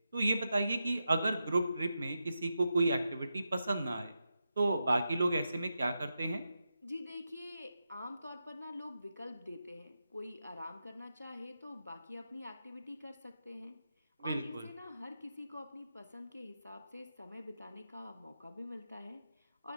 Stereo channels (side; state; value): both; inverted; correlation -0.88